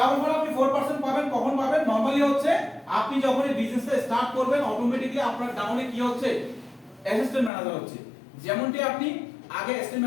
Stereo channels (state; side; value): drops out; right; at 7.5 s